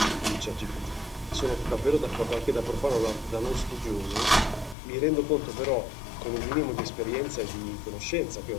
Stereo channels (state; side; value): drops out; right; at 4.8 s